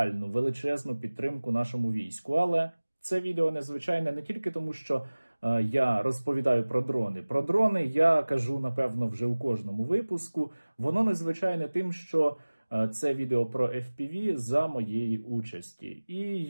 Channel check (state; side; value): inverted; both; correlation -1.00